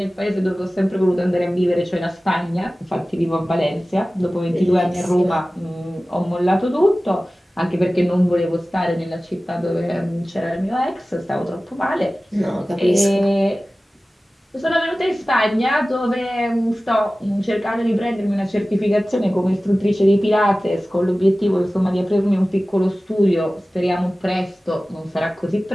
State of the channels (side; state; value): both; normal; correlation 0.97